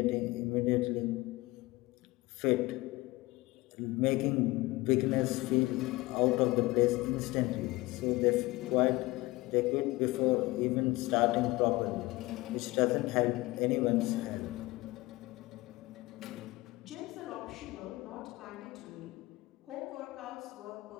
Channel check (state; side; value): quieter; right; 20.7 dB